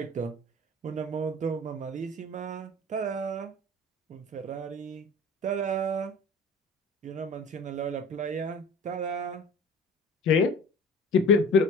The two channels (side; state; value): both; normal; correlation 0.41